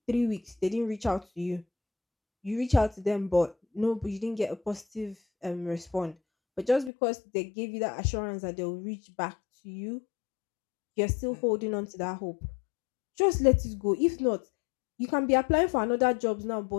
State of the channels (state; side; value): drops out; right; at 6.9 s